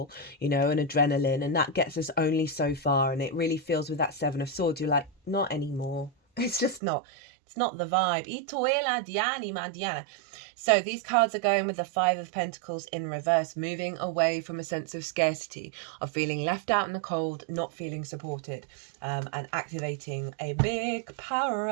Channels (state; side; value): drops out; left; at 6.8 s